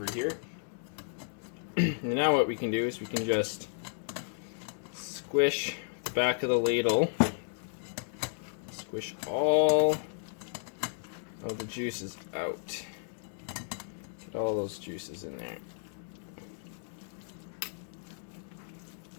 here. And now what we can do is we can just squish the back of the ladle, squish all of the juices out. Get all those juices in there.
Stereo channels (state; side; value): silent; right; digital silence